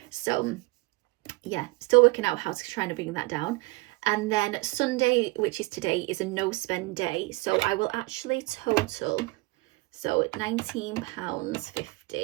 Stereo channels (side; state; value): left; quieter; 23.9 dB